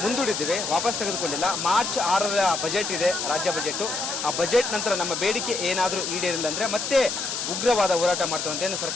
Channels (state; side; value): noise; left; hiss, 3 dB below the sound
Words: ಮುಂದೂಡಿದ್ದೇವೆ, ವಾಪಸ್ ತೆಗೆದುಕೊಂಡಿಲ್ಲ. ಮಾರ್ಚ್ 6ರ ಬಜೆಟ್ ಇದೆ, ರಾಜ್ಯ ಬಜೆಟು. ಆ ಬಜೆಟ್ ನಂತರ ನಮ್ಮ ಬೇಡಿಕೆ ಏನಾದರೂ ಈಡೇರಿಲ್ಲ ಅಂದರೆ ಮತ್ತೆ ಉಗ್ರವಾದ ಹೋರಾಟ ಮಾಡ್ತೇವೆ ಅಂತ